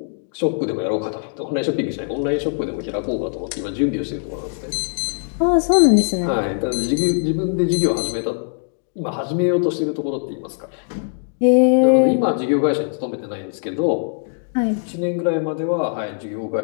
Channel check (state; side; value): silent; right; digital silence